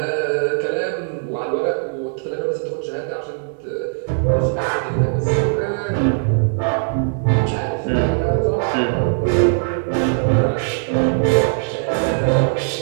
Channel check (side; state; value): left; silent; 66 dB below the other